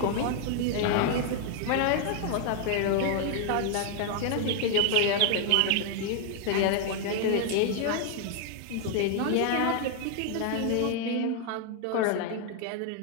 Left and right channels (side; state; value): both; different; correlation 0.00